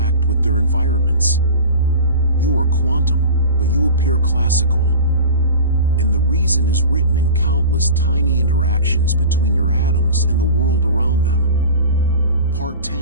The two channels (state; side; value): inverted; both; correlation -0.36